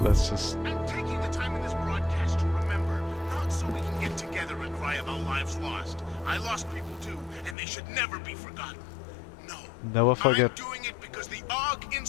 just... I'm taking the time in this broadcast to remember, not so we can get together and cry about lives lost. I lost people too, and they should never be forgotten. No. Never forget. I'm doing it because the Og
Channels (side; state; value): right; drops out; at 7.6 s